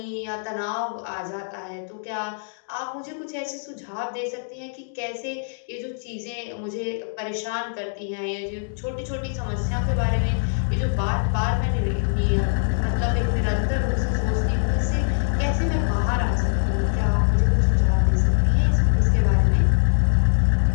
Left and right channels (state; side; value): silent; right; digital silence